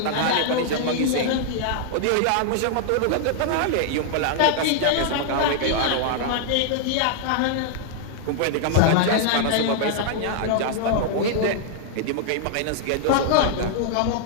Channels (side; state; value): both; different; correlation -0.01